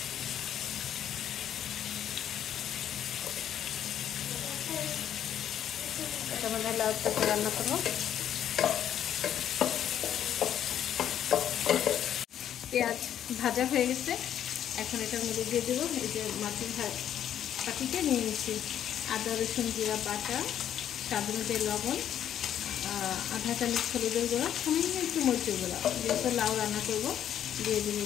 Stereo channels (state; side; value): quieter; right; 10.2 dB